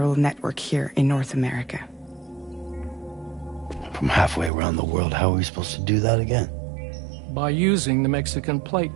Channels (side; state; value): left; drops out; at 4.5 s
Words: network here in North America. From halfway around the world, how are we supposed to do that again? By using the Mexican